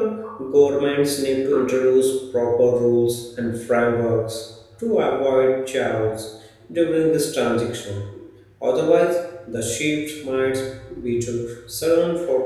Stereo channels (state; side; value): identical; both; correlation 1.00